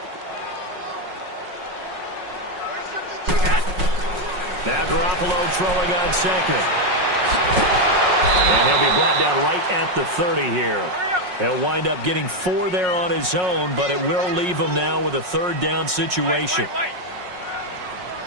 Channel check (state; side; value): late; left; 5.5 ms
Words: Now Garoppolo throwing on 2nd. And he'll be brought down right at the 30 here. He'll wind up getting 4 there on his own, but it will leave him now with a 3rd down situation.